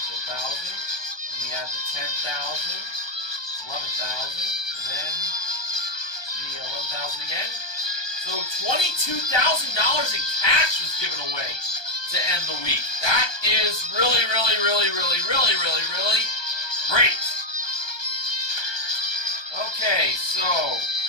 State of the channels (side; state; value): right; late; 1.2 ms